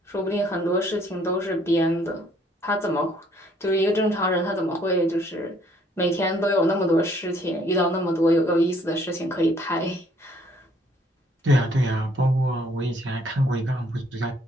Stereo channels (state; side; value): normal; both; correlation 0.63